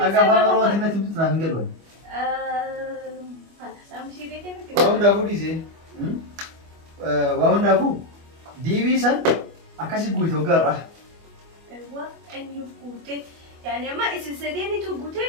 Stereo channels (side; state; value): left; late; 25 ms